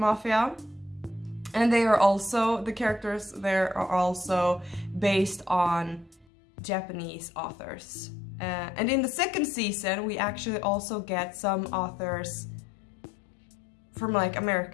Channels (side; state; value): right; drops out; at 6.2 s